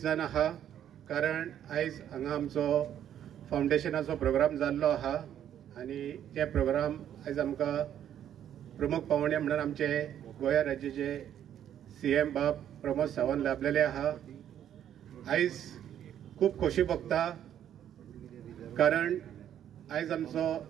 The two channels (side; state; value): left; quieter; 10.3 dB